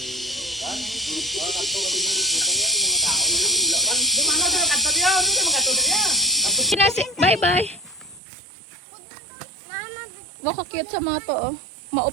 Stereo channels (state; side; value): drops out; left; at 8.2 s